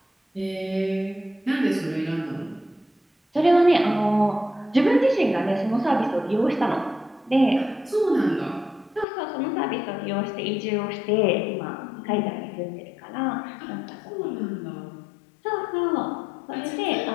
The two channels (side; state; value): right; drops out; at 9.1 s